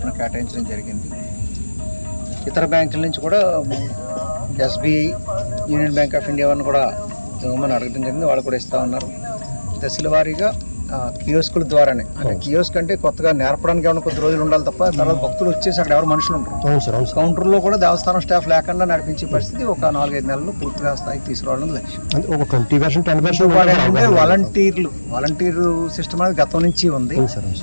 కేటాయించడం జరిగింది. ఇతర బ్యాంకుల నుంచి కూడా SBI, union bank of India వారిని కూడా ఇవ్వమని అడగడం జరిగింది. వాళ్ళు కూడా ఇస్తూ ఉన్నారు. దశల వారీగా కియోస్కుల ద్వారానే. అంటే కియోస్క్ అంటే కొత్తగా నేర్పడానికి ఏమైనా కొద్ది రోజులు ఉండాలి తప్ప తర్వాత భక్తులు వచ్చేసి అక్కడ ఎవరు మనుషులు ఉంటారు. కౌంటర్లో కూడా దేవస్థానం స్టాఫ్ లేకుండా నడిపించే పరిస్థితి ఒక 4-5 నెలలు పూర్తిగా స్థాయికి తీసుకురావడం లక్ష్యం. వాలంటీర్ సిస్టమ్ అనేది గతం నుంచి ఉంది.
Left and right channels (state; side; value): inverted; both; correlation -1.00